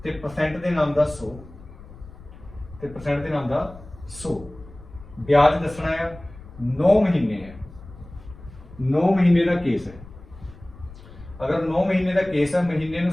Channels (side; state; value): left; noise; rumble, 18 dB below the sound